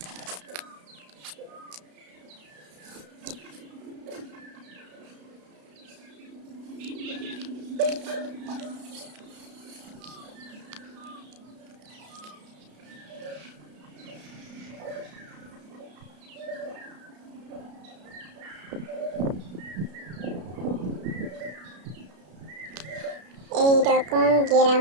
এই রকম গ্রাম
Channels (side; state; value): left; late; 33 ms